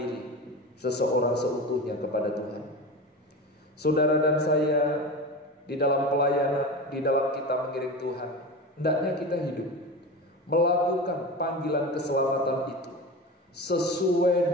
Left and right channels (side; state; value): both; normal; correlation 0.27